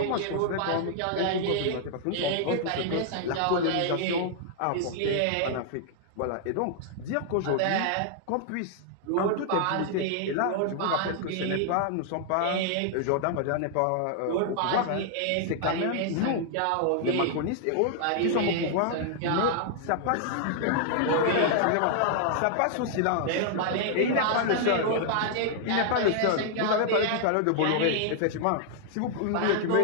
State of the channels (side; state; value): both; different; correlation -0.01